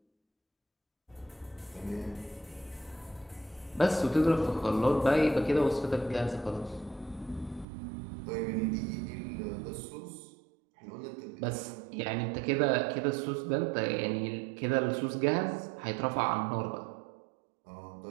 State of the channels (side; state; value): left; drops out; at 7.7 s